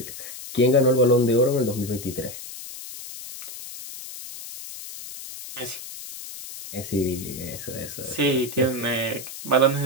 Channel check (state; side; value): noise; left; hiss, 12 dB below the sound